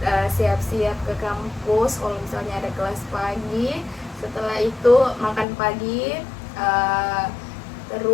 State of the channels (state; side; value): drops out; right; at 5.5 s